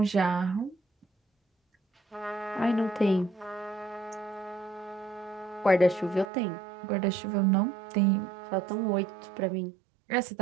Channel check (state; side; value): drops out; left; at 6.3 s